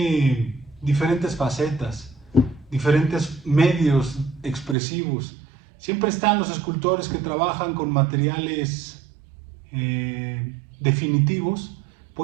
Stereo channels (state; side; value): drops out; left; at 4.8 s